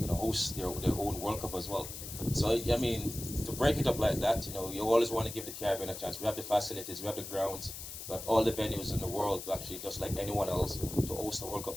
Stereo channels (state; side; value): noise; left; hiss, 9 dB below the sound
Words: their own World Cup as well. So I mean, to break it up like that, you always want to give the Caribbean a chance. We have the facilities, we have the grounds, we have all the venues in the world to actually, just like anyone else, to host the World Cup